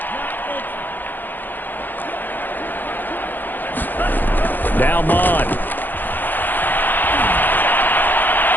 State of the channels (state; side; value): late; right; 0.087 ms